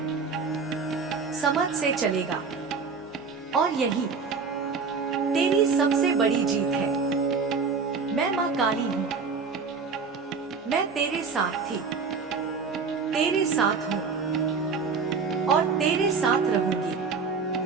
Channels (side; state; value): left; quieter; 5.0 dB